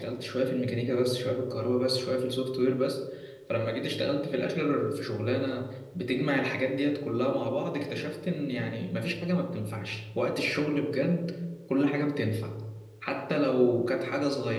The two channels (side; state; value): both; identical; correlation 1.00